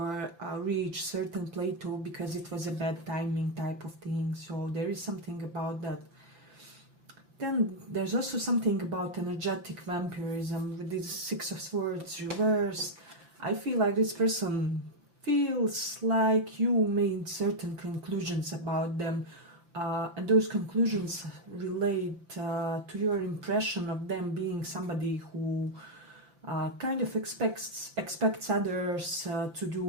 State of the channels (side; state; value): left; late; 5.9 ms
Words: reach certain plateau because it was a bad timing type of thing. So there is something about that. Then there's also something about energetic vampirism with this Six of Swords reversed. I feel like this person feels like you made certain conclusions about them, and those conclusions relate to your impression of them being somebody who kind of expects others to